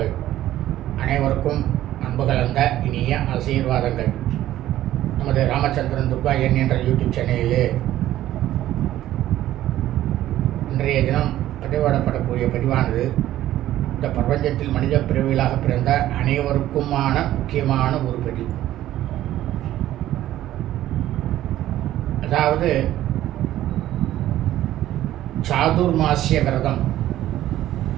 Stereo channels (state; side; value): quieter; left; 13.6 dB